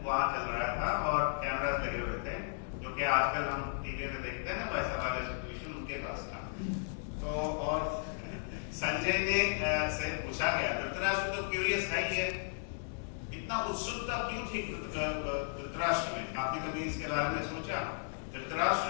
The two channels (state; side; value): silent; right; digital silence